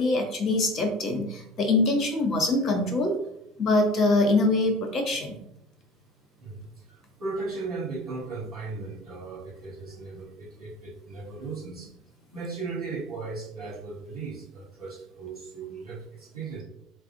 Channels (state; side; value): normal; both; correlation 0.41